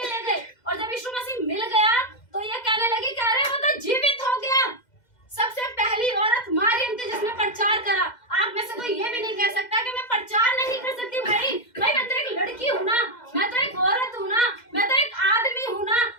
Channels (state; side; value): late; right; 2.0 ms